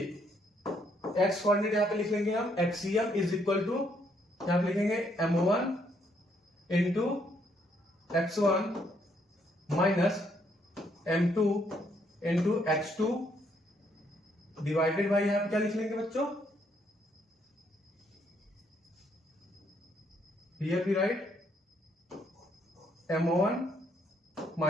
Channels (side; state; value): both; normal; correlation 0.71